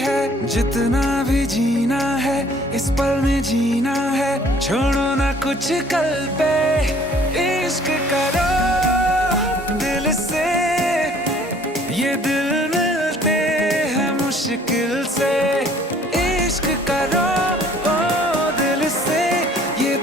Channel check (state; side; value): normal; both; correlation 0.56